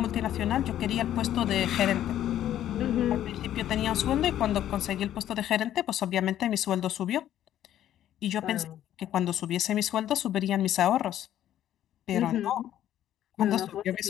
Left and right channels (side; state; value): right; quieter; 11.7 dB